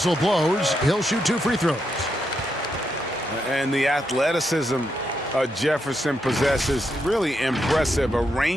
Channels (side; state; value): both; normal; correlation 0.81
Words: blows. He'll shoot 2 free throws. And the athleticism Jefferson possesses, really impressive. A